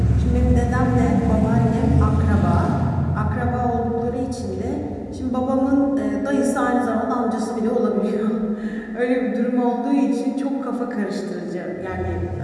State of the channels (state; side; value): identical; both; correlation 1.00